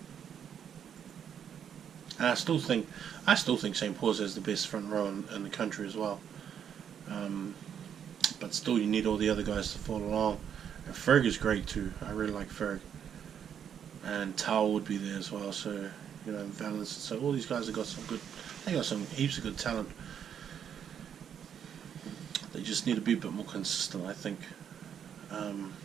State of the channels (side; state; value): left; quieter; 8.5 dB